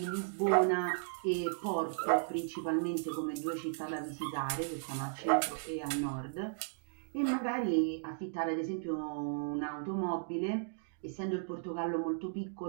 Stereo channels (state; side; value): silent; left; digital silence